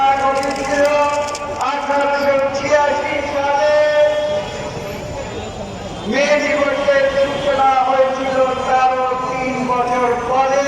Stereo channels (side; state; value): both; identical; correlation 1.00